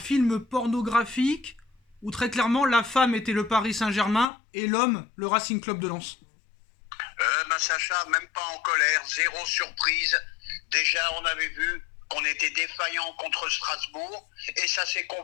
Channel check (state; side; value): drops out; right; at 4.3 s